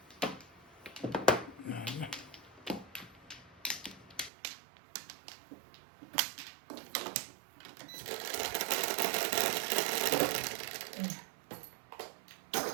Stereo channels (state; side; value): drops out; left; at 4.3 s